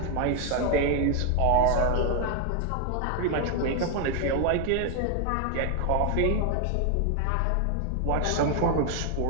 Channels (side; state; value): both; different; correlation 0.01